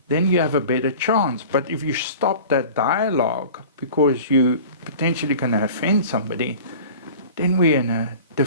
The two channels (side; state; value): both; inverted; correlation -0.41